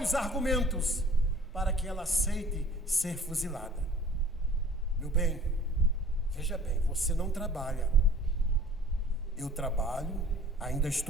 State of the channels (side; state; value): both; normal; correlation 0.49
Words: argumentos para que ela aceite ser fuzilada. Meu bem, veja bem, você não trabalha. Eu trabalho, ainda